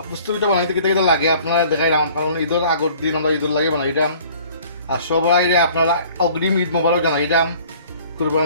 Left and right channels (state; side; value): inverted; both; correlation -0.52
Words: পুস্তো পিঠা বানাইতে কেটে কেটে লাগে আপনারা দেখাইলাম, কারণ ঈদের আগের দিন আমরা ঈদের লাগে বানাইলাম। আর সবাই আপনারা অগ্রিম ঈদ মোবারক জানাইলাম।